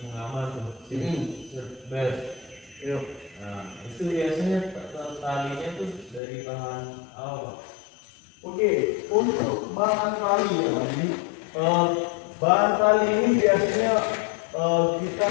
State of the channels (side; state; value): right; drops out; at 6.2 s